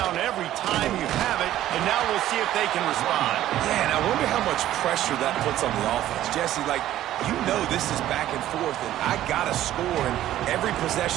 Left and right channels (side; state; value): left; quieter; 13.2 dB